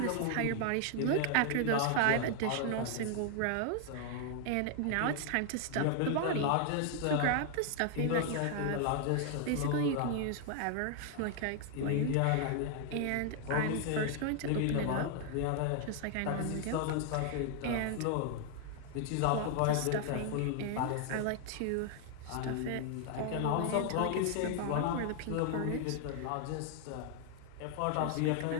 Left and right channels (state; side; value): different; both; correlation 0.00